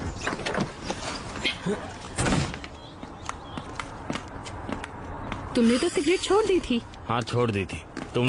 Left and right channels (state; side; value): identical; both; correlation 1.00